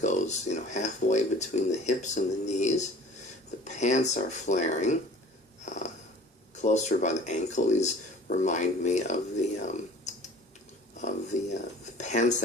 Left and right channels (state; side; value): normal; both; correlation 0.46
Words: halfway between the hips and the knees. The pants are flaring closer by the ankle. These remind me of the pants